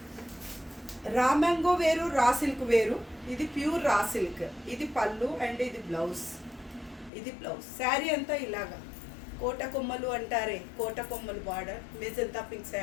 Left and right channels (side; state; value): right; drops out; at 7.1 s